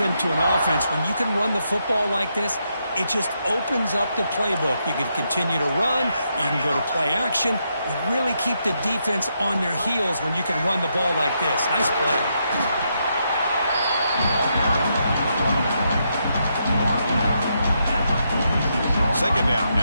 to an offense. When you can run the football like this, it just opens up the playbook. You can continue to run. You can go to play action. You really keep the defense on their heels when you can run the ball like this. Nice play. Second down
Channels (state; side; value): inverted; both; correlation -0.80